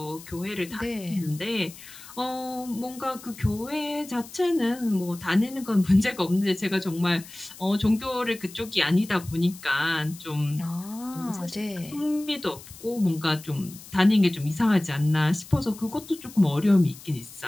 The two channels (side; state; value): left; noise; hiss, 18 dB below the sound